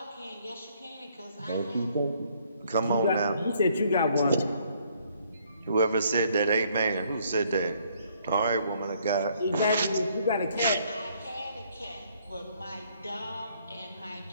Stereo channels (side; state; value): both; inverted; correlation -0.66